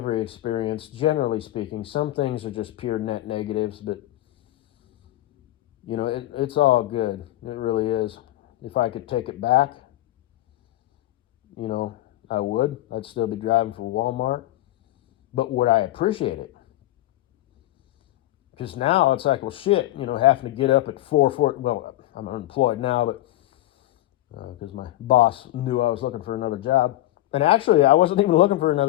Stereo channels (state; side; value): quieter; right; 15.8 dB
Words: experience, generally speaking. Some things are just pure net negatives, but, it's all good. It really is. If I could take it back, I would. I'd still be driving for Walmart. But would I appreciate it? Because now it's like, well, shit, having to get up at 4:40. Well, I'm unemployed now, but because my boss knew I was looking for another job. And actually, I wasn't even looking for